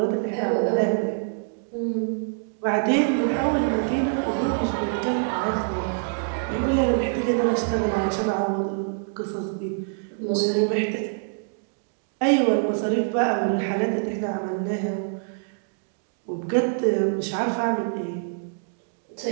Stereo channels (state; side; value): silent; left; digital silence